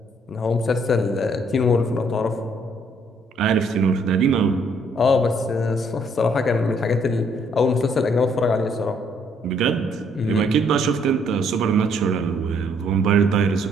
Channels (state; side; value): normal; both; correlation 0.67